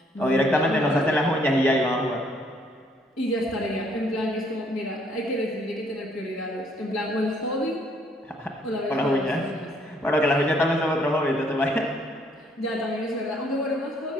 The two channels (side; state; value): both; normal; correlation 0.66